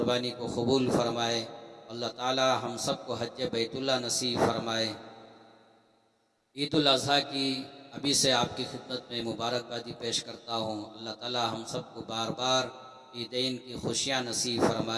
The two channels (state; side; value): identical; both; correlation 1.00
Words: को कबूल फरमाए। अल्लाह ताला हम सब को हज बैतुल्लाह नसीब फरमाए। ईदुल अज़हा की अभी से आपकी खिदमत में मुबारकबादी पेश करता हूँ। अल्लाह ताला हम सब को बार बार ईदैन की खुशियाँ नसीब